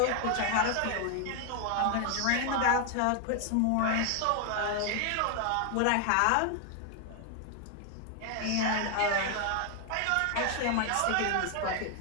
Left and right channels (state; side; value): different; both; correlation 0.00